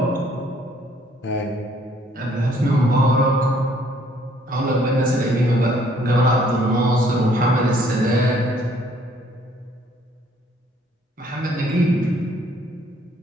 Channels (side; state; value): both; normal; correlation 0.63